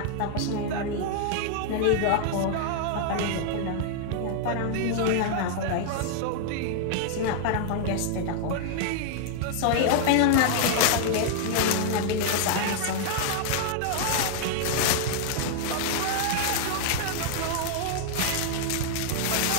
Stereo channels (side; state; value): both; different; correlation -0.01